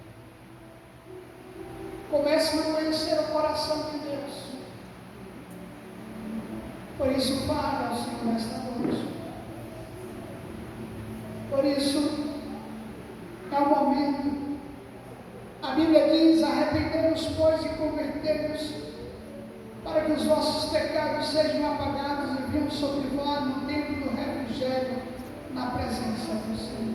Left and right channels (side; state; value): both; identical; correlation 1.00